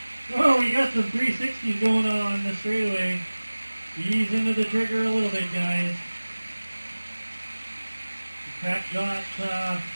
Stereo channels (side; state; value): both; inverted; correlation -1.00